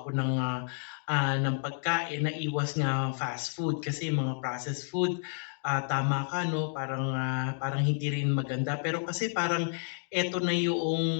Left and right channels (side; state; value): right; silent; 57 dB below the other